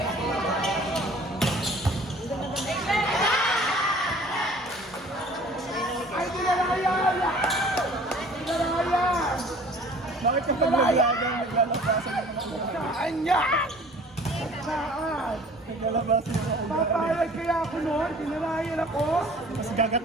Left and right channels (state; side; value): normal; both; correlation 0.49